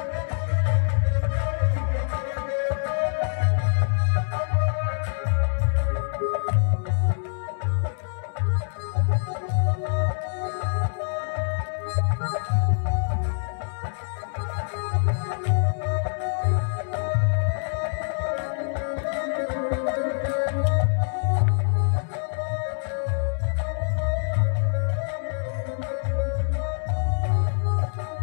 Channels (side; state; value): right; silent; 62 dB below the other